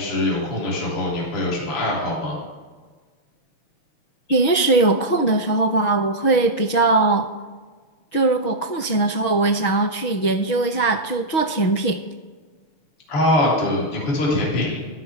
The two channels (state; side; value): late; right; 6.3 ms